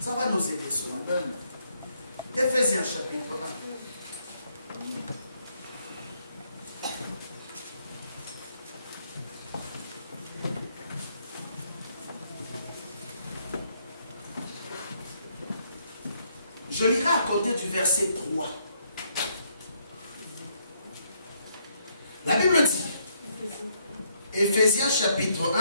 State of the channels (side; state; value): both; inverted; correlation -0.72